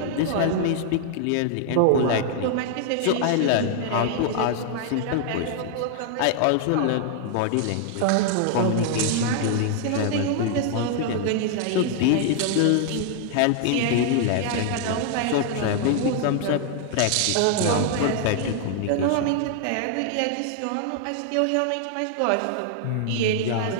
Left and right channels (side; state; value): both; different; correlation 0.00